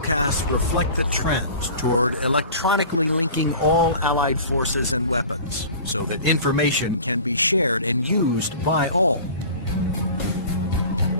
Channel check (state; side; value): inverted; both; correlation -0.40